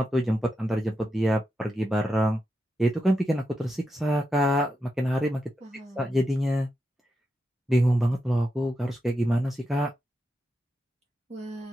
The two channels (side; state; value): both; normal; correlation 0.87